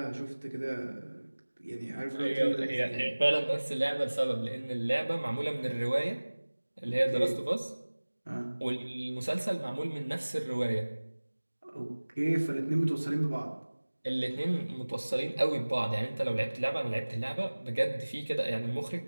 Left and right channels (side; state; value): both; inverted; correlation -1.00